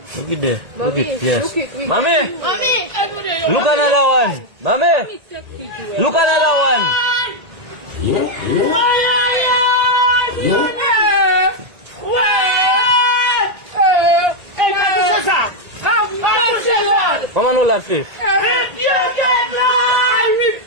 Look it there. Look it. Yes. Look it. Mommy. Look another one. Mommy. Look another one. Yeah. Mama, no laugh face. I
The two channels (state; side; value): late; left; 1.8 ms